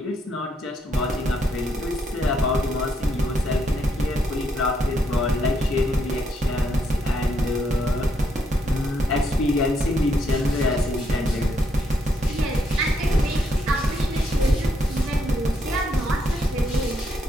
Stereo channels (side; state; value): both; normal; correlation 0.75